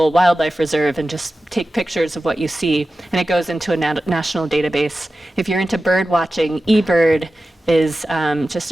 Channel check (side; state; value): both; normal; correlation 0.94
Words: wildlife reserve and just take pictures of what you see, and it goes into a national database. If you're into bird watching, eBird is just